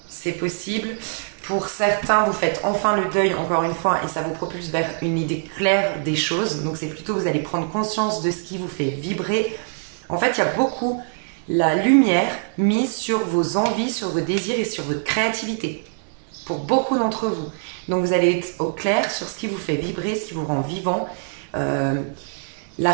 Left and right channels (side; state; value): left; silent; digital silence